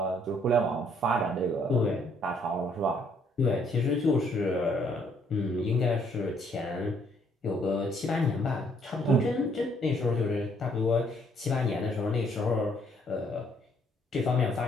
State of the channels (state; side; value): normal; both; correlation 0.66